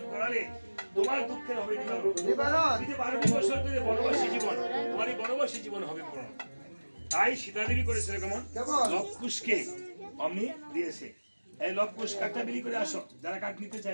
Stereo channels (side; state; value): both; inverted; correlation -1.00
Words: করালে তোমার দুঃখের হবে নিবারণ। 12 বছর ধরে বনবাসী জীবন, তোমার এই বনবাসী জীবন হবে পূরণ। তাই সীতাদেবী করেছিল কেমন? লবকুশকে অমনি দিয়েছে। এই লবকুশ কাঠটা বিলি করে আসো, যারা কাঠ নিতে